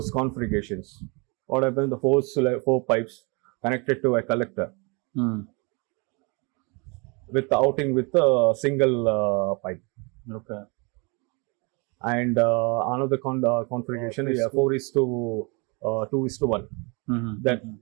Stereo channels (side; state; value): left; quieter; 30.8 dB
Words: configurations. What happens? The four pipes connected to a collector. With the outing with a single pipe. Okay. And another configuration is 4:2:1. That